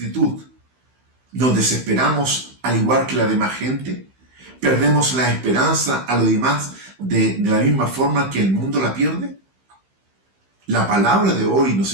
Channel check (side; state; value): left; late; 15 ms